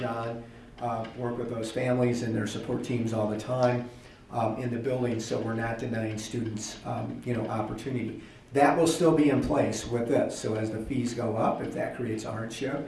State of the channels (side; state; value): both; identical; correlation 1.00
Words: work with those families and their support teams all the time in the building, so we're not denying students you know, opportunity. That will still be in place with this. So as the fees go up, if that creates a